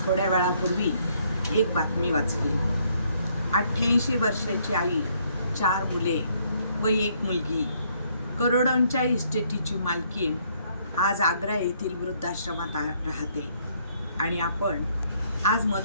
थोड्या वेळापूर्वी एक बातमी वाचली. 88 वर्षाची आई, 4 मुले व 1 मुलगी, करोडोंच्या इस्टेटीची मालकीण आज आग्रा येथील वृद्धाश्रमात राहते आणि आपण आज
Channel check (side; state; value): both; inverted; correlation -0.68